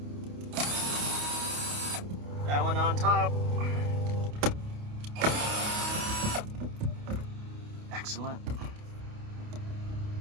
That one on top. Excellent.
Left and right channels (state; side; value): late; left; 28 ms